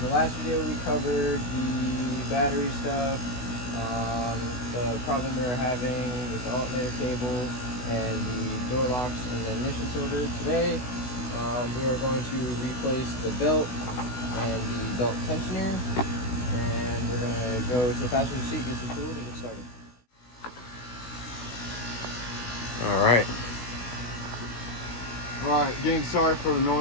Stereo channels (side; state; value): right; late; 16 ms